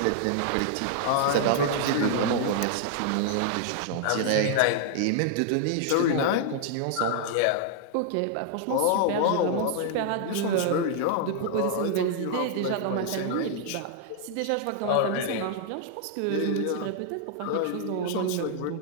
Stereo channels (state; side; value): different; both; correlation -0.01